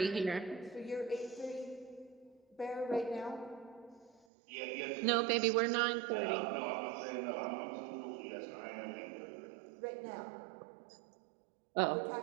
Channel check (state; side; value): drops out; left; at 4.2 s